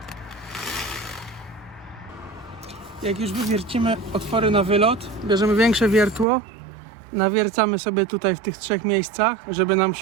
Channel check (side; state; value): left; drops out; at 6.2 s